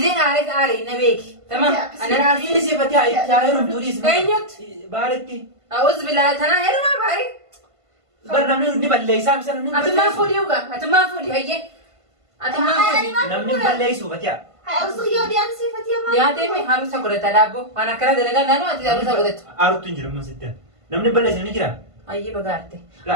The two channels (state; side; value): late; left; 1.5 ms